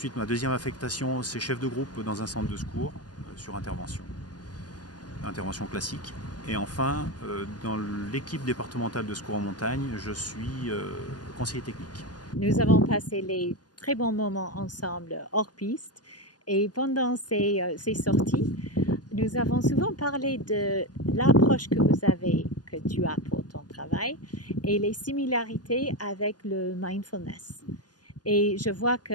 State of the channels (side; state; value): right; late; 0.69 ms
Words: ma deuxième affectation, c'est chef de groupe dans un centre de secours sur intervention classique. Et enfin, dans l'équipe départementale de secours en montagne, je suis conseiller technique. Nous avons passé les très bons moments ensemble hors piste et pendant ces sorties, nous avons souvent parlé de l'approche que tu as pour ton travail et les similarités avec le mindfulness. Et je vois